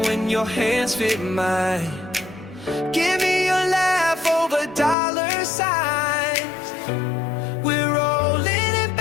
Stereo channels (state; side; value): drops out; right; at 5.0 s